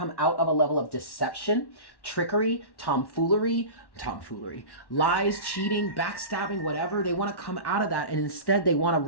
out of a level of deception, trickery, tomfoolery, lies, cheating, backstabbing, whatever. They want to come out of that, and instead they want a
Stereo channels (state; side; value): late; right; 1.1 ms